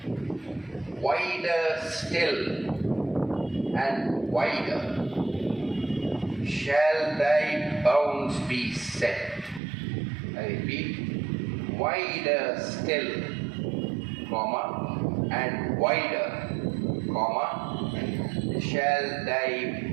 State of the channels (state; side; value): drops out; left; at 9.6 s